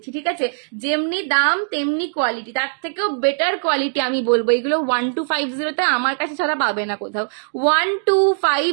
ঠিক আছে। যেমনি দাম তেমনি কোয়ালিটি, তার থেকেও বেটার কোয়ালিটি আমি বলবো। এগুলো 1250-তে আমার কাছে ছাড়া পাবে না কোথাও।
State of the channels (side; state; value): left; silent; digital silence